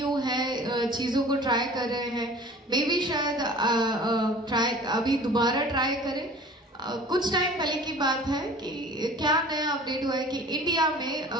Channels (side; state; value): both; normal; correlation 0.44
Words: है, चीजों को ट्राई कर रहे हैं। मे भी शायद अभी दोबारा ट्राई करें। कुछ टाइम पहले की बात है कि क्या नया अपडेट हुआ है कि इंडिया में